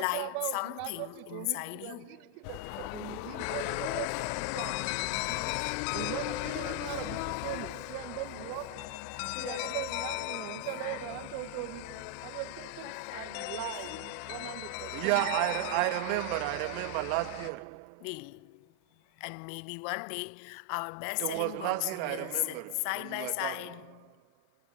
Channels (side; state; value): both; different; correlation 0.00